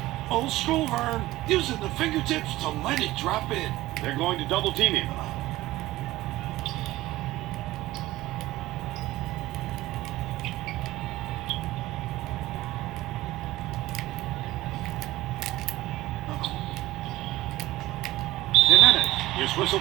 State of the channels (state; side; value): quieter; left; 17.1 dB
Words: Old school, Vern. Using the fingertips to let it drop in. They're going to double team him. Jimenez is